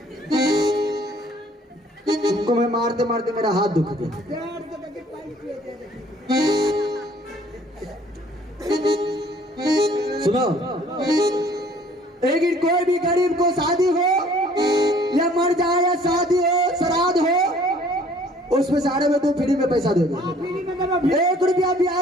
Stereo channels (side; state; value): both; normal; correlation 0.57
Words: तुमको मैं मारते मारते मेरा हाथ दुख गया। सुनो, लेकिन कोई भी गरीब को शादी हो या मर जाए या शादी हो श्राद्ध हो, उसमें सारे में तुम फ्री में पैसा दोगे? 1 रुपया